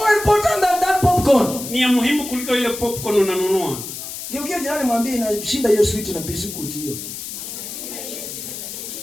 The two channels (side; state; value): left; noise; hiss, 9 dB below the sound